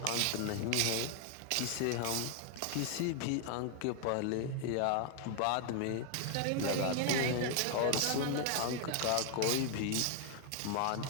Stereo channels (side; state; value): both; different; correlation 0.00